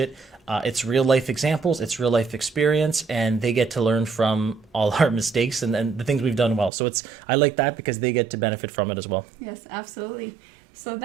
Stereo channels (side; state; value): left; drops out; at 6.7 s